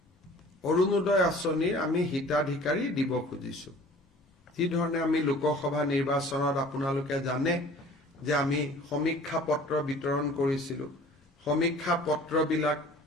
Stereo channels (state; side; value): normal; both; correlation 0.48